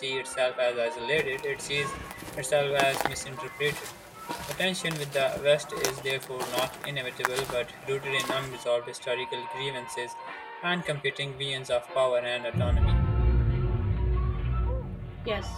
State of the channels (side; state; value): both; identical; correlation 1.00